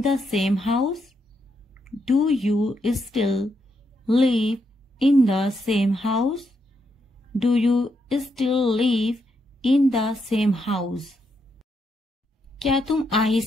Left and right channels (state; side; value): normal; both; correlation 0.80